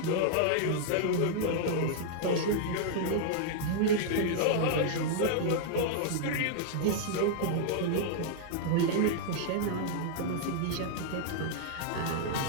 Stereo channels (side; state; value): both; different; correlation -0.01